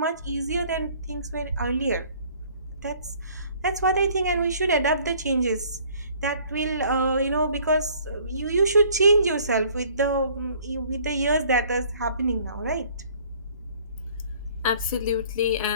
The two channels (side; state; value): both; inverted; correlation -0.56